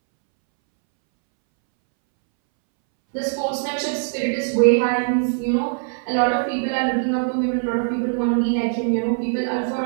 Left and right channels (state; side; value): silent; left; 65 dB below the other